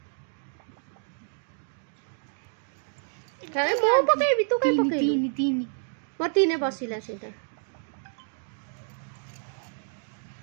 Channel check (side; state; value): left; silent; digital silence